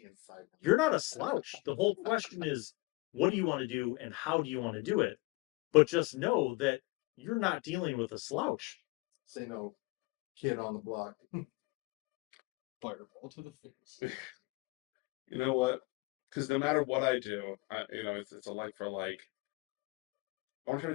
you're not a slouch. The whole question is, what do you want to do and how do you want to do it? But just know that you're not dealing with a slouch. Say no, kid on the block. Fireball to the face. you know what? Because no matter what I do, it's a like for like. I want to try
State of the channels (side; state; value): right; quieter; 24.7 dB